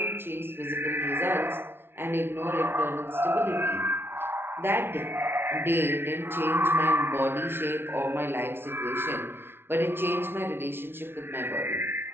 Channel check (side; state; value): left; late; 0.11 ms